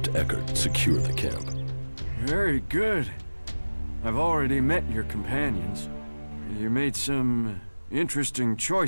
Eckert secure the camp. Very good. I've already met your companions. You made some interesting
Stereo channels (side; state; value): both; inverted; correlation -1.00